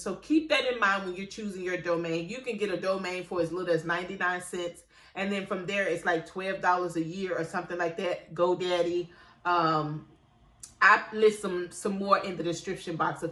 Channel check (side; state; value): both; identical; correlation 1.00